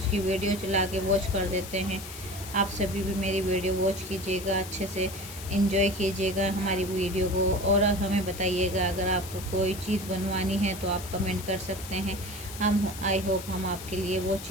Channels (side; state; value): left; noise; hiss, 12 dB below the sound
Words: वीडियो चला के वॉच कर देते हैं। आप सभी भी मेरी वीडियो वॉच कीजिएगा, अच्छे से एंजॉय कीजिएगा हमारी वीडियो को, और हमें बताइएगा अगर आपको कोई चीज़ बनवानी है तो आप कमेंट कर सकते हैं। हम आई होप हम आपके लिए वो